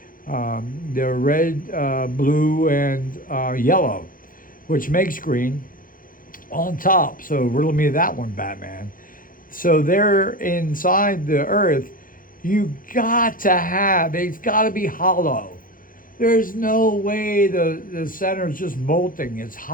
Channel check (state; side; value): late; right; 0.40 ms